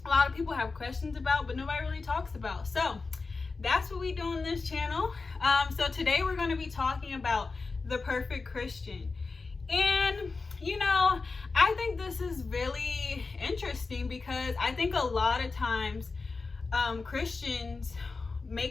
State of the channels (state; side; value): quieter; right; 4.1 dB